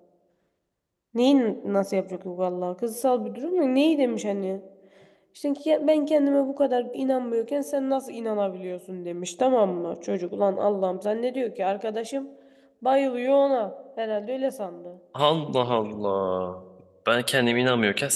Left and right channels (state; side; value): identical; both; correlation 1.00